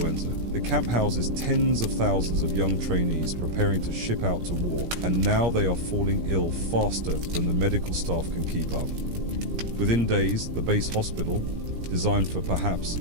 The camp houses tens of thousands of young trainees preparing to ship out to war, and now they are falling ill faster than the medical staff can keep up. Within days, the base hospital, designed for perhaps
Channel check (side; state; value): left; late; 17 ms